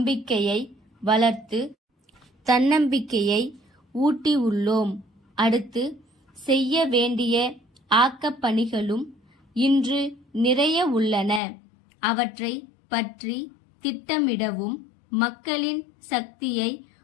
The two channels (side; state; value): right; drops out; at 11.4 s